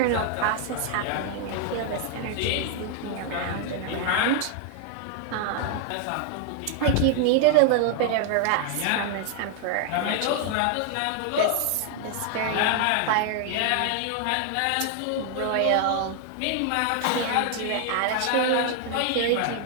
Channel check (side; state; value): both; different; correlation 0.00